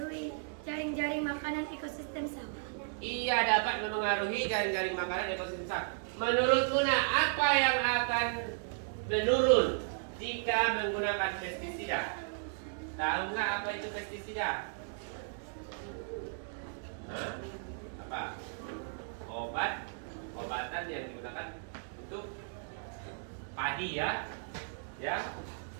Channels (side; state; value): left; silent; digital silence